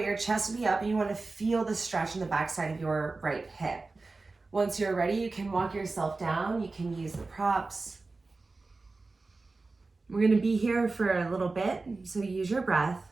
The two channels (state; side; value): quieter; left; 3.6 dB